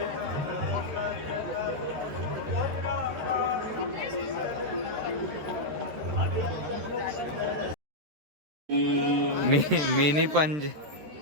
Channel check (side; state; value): left; late; 13 ms